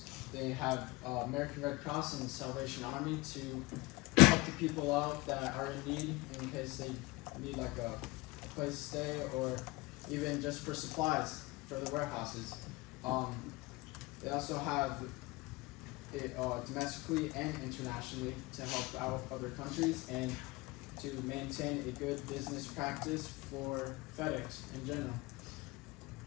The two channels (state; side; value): quieter; right; 22.9 dB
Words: they have American Red Cross and Salvation Army to help the people out that are in need in case they need like a place to stay or even just for supplies for the warehouses. They also have it domestically and internationally to help out other countries and to maintain a good business practice for FedEx in general.